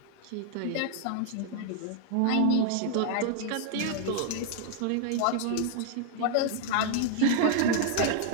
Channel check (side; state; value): both; different; correlation 0.00